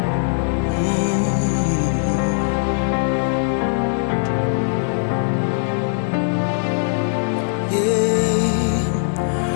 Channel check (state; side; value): silent; right; 66 dB below the other